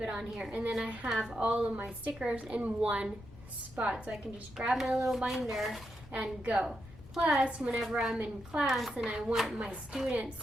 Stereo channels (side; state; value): left; noise; rumble, 18 dB below the sound